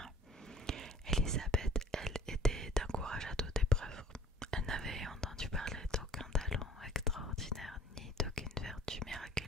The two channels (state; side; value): normal; both; correlation 0.51